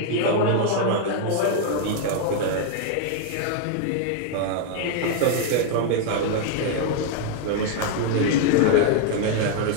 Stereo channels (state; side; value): different; both; correlation 0.00